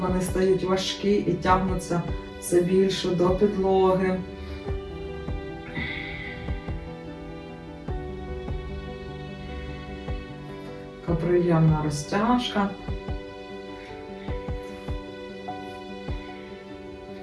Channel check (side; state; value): both; identical; correlation 1.00